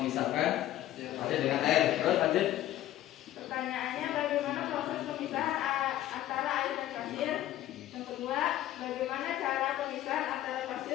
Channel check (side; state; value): right; quieter; 13.6 dB